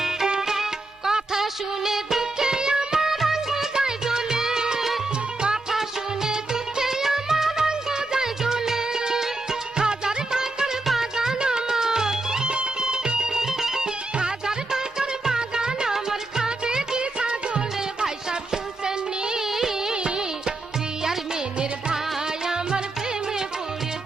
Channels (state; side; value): quieter; left; 3.0 dB